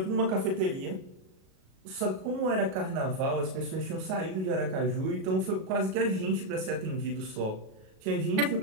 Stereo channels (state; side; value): late; left; 37 ms